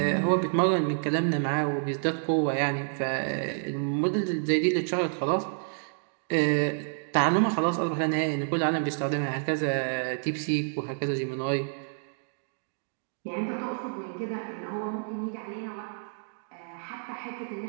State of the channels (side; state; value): left; silent; digital silence